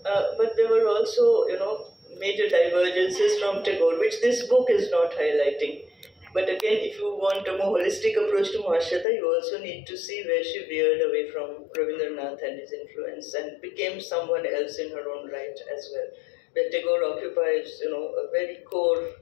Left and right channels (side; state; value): right; drops out; at 9.1 s